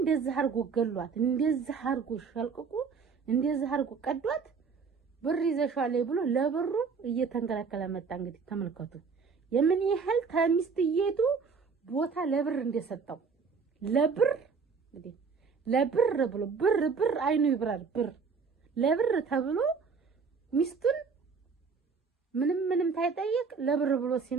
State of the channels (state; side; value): quieter; left; 5.4 dB